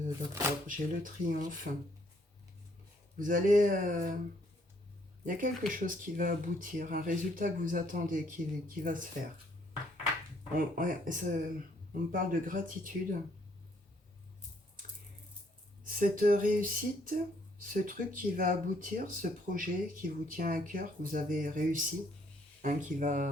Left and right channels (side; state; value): both; normal; correlation 0.67